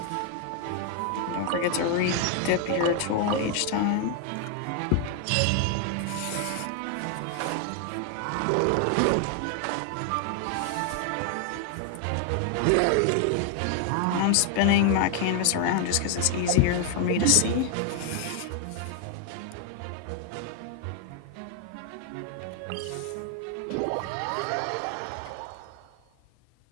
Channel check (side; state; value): both; different; correlation 0.00